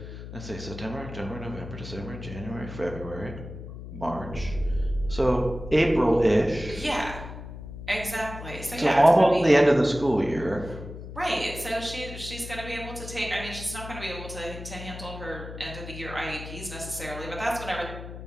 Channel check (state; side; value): noise; left; hum, 11 dB below the sound